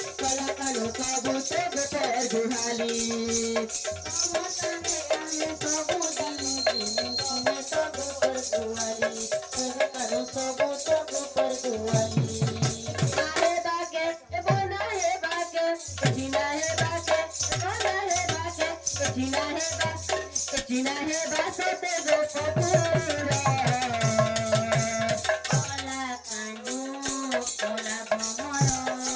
কলা কানু সবু সব পর গুহালি তম সঙ্গে আমি সবু দিব তুমি সব পর গুহালি কলা কানু সবু সব পর গুহালি আরে বাকে বনা হে বাকে জিনা হে বাকে বনা হে বাকে জিনা হে বাকে China he basate go popura Kola kanu kola bhamara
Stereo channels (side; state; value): both; identical; correlation 1.00